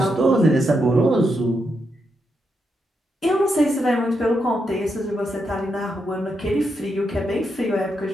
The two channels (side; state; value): both; normal; correlation 0.82